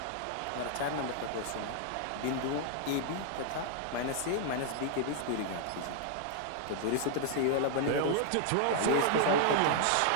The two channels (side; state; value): both; different; correlation -0.01